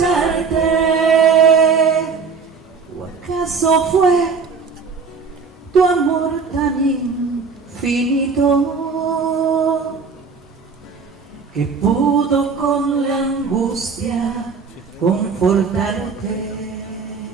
¿O acaso fue tu amor tan infinito que pudo con la angustia confortarte?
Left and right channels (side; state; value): left; quieter; 5.2 dB